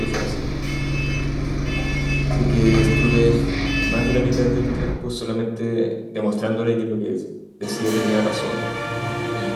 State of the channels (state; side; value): identical; both; correlation 1.00